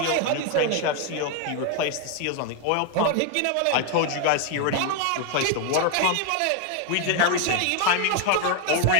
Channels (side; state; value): both; different; correlation 0.01